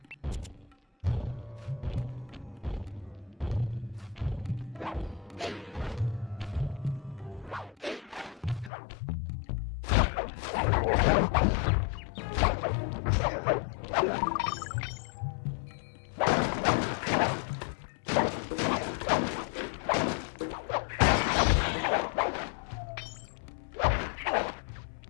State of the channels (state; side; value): drops out; right; at 8.7 s